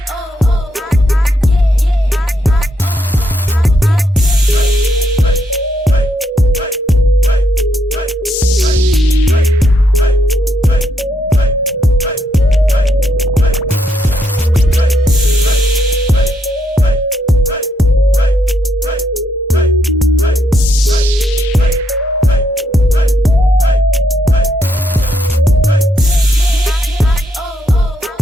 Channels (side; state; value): both; normal; correlation 0.76